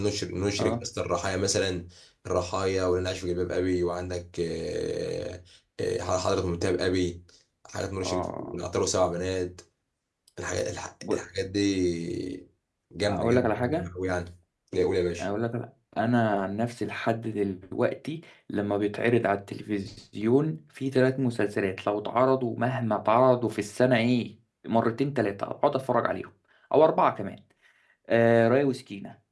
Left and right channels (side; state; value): both; identical; correlation 1.00